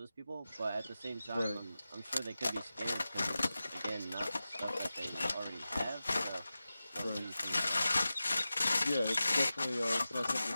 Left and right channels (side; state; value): both; inverted; correlation -0.94